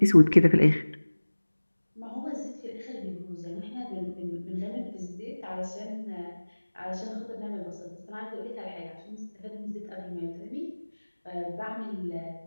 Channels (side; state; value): both; inverted; correlation -1.00